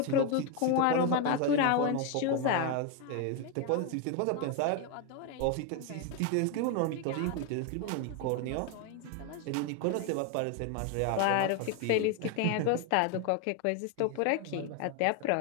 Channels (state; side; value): different; both; correlation 0.01